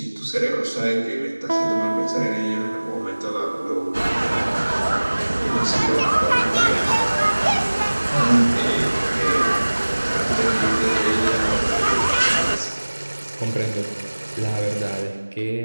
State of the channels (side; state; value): both; inverted; correlation -1.00